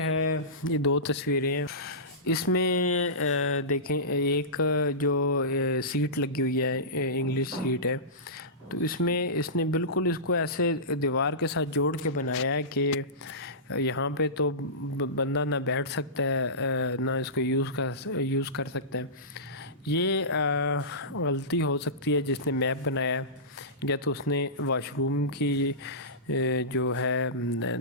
یہ دو تصویریں ہیں۔ اس میں دیکھیں، ایک جو سیٹ لگی ہوئی ہے، انگلش سیٹ ہے، تو اس میں اس نے بالکل اس کو ایسے دیوار کے ساتھ جوڑ کے بنایا ہے کہ یہاں پہ تو بندہ نہ بیٹھ سکتا ہے نہ اس کو یوز کر سکتا ہے۔ یہ غلطی ہو سکتی ہے جس نے میپ بنایا ہے، یا تو اس نے واش روم کی جو ہے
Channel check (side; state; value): both; normal; correlation -0.20